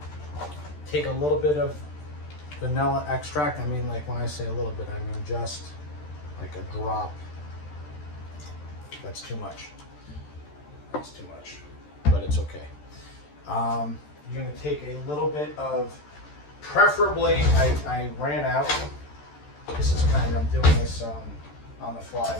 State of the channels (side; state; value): right; late; 13 ms